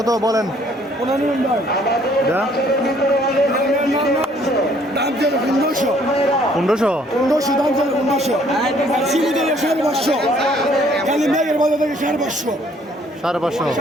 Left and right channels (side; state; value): both; normal; correlation 0.62